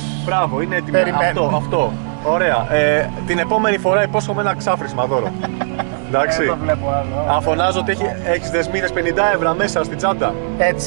Μπράβο, είναι έτοιμο. Αυτό. Ωραία. Την επόμενη φορά υπόσχομαι ένα ξάφρισμα δώρο. Εντάξει. Δεν το βλέπω άλλο. Να φωνάζω ότι έχεις δεσμίδες 50 ευρώ μέσα στην τσάντα.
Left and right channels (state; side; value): silent; left; digital silence